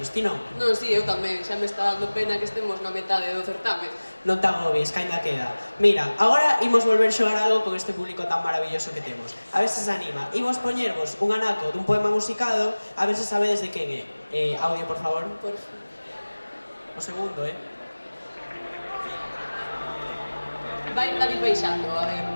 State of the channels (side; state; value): both; inverted; correlation -1.00